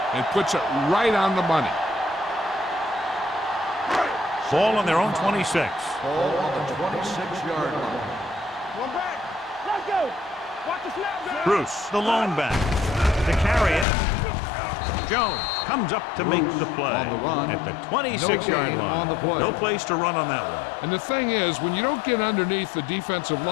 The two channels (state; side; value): drops out; right; at 13.9 s